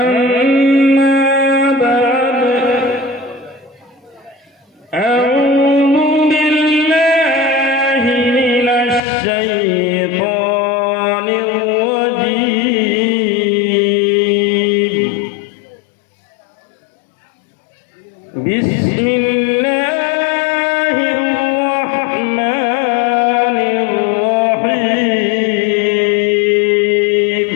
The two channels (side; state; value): right; drops out; at 9.0 s